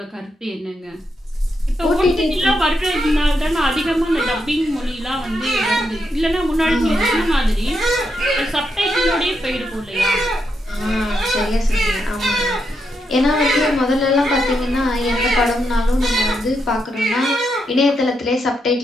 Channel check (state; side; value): normal; both; correlation 0.82